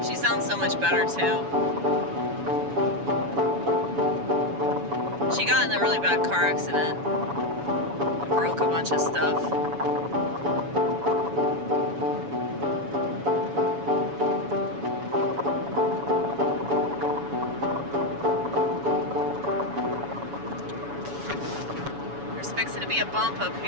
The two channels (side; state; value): left; late; 7.1 ms